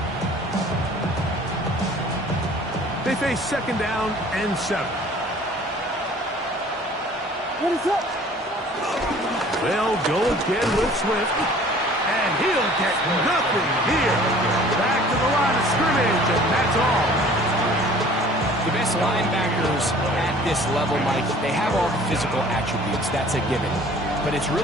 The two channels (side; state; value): both; normal; correlation 0.50